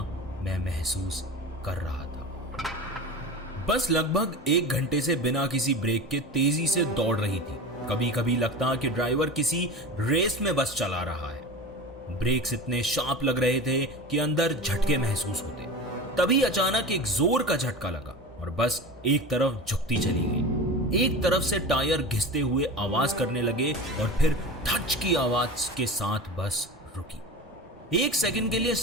मैं महसूस कर रहा था। बस लगभग 1 घंटे से बिना किसी ब्रेक के तेजी से दौड़ रही थी। कभी कभी लगता कि ड्राइवर किसी रेस में बस चला रहा है। ब्रेक्स इतने शार्प लग रहे थे कि अंदर झटके महसूस होते। तभी अचानक एक जोर का झटका लगा और बस एक तरफ झुकती चली गई। एक तरफ से टायर घिसते हुए आवाज करने लगे और फिर धच की आवाज के साथ बस रुकी। 1 सेकंड के लिए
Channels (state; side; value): normal; both; correlation 0.30